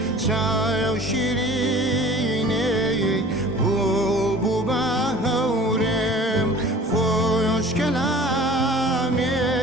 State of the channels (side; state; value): both; normal; correlation 0.45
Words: شاي وشيريني بوبو باهورم خوش